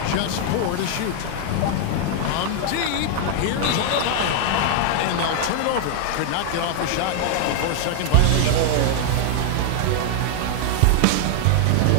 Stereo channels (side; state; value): both; different; correlation 0.00